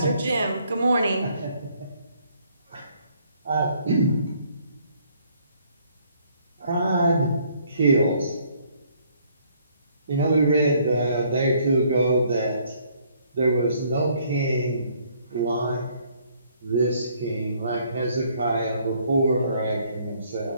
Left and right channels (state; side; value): inverted; both; correlation -0.65